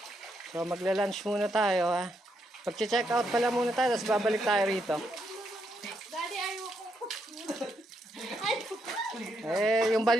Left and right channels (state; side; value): normal; both; correlation 0.79